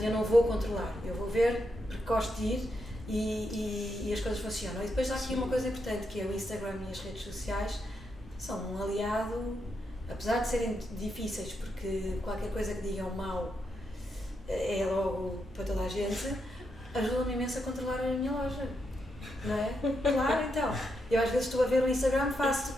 eu não vou controlar, eu vou ver porque gosto de ir e as coisas funcionam. E depois há aqui uma coisa importante, que é o Instagram e as redes sociais são um aliado, apesar de serem difíceis, porque qualquer coisa que digam mal é logo para toda a gente, ajuda-me imenso a controlar a minha loja, não é? Claro, então. Eu às vezes estou a ver o Instagram, faço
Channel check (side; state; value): both; normal; correlation 0.82